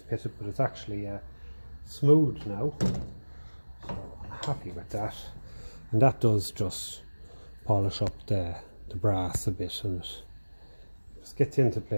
pitted, but it's actually smooth now, so I'm happy with that. And that does just polish up the brass a bit, and it just gets into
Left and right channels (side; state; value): both; inverted; correlation -1.00